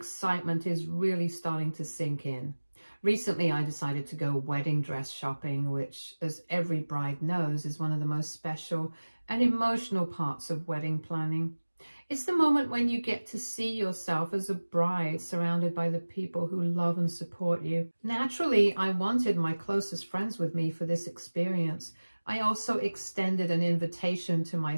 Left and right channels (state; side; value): inverted; both; correlation -1.00